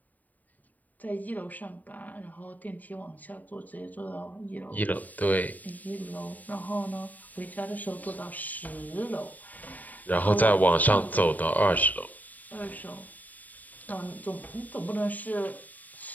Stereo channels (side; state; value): right; late; 0.080 ms